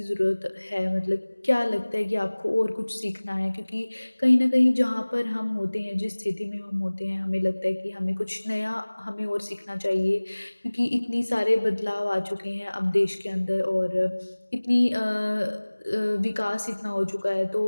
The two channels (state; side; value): inverted; both; correlation -1.00